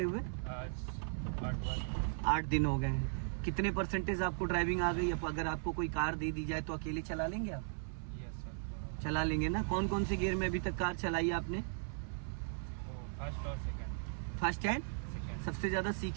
हुए? आज 8 दिन हो गए हैं। कितने परसेंटेज आपको ड्राइविंग आ गई? अब अगर आपको कोई कार दे दी जाए तो अकेले चला लेंगे आप? चला लेंगे ना। कौन कौन से गियर में अभी तक कार चलाई है आपने? फर्स्ट और सेकंड। फर्स्ट एंड सबसे ज्यादा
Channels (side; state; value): left; silent; 53 dB below the other